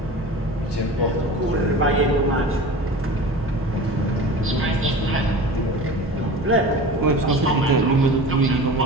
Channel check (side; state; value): both; normal; correlation 0.36